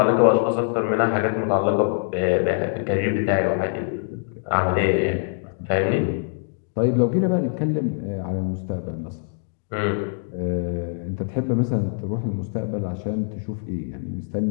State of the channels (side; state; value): right; silent; digital silence